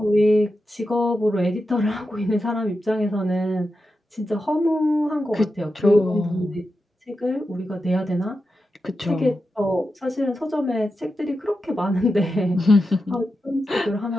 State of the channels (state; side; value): normal; both; correlation 0.89